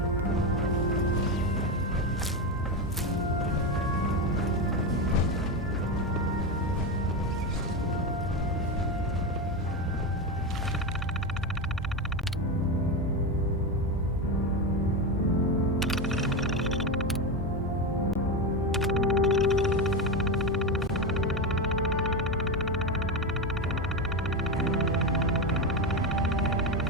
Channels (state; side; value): normal; both; correlation 0.14